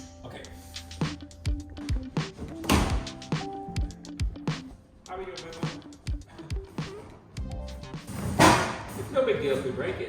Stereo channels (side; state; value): both; identical; correlation 1.00